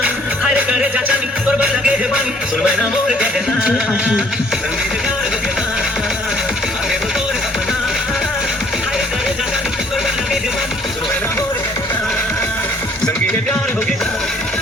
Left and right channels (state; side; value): normal; both; correlation 0.62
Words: हर करे चाचा नी और बन लगे है बानी, सुन मैं ना मोर कहना। संगीत प्यार हो गया ना, आते हो तो सपना, हर करे चाचा नी और बन लगे है बानी, सुन मैं ना मोर कहना। संगीत प्यार हो गया ना,